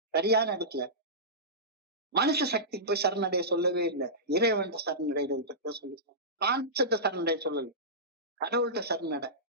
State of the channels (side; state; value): both; normal; correlation -0.18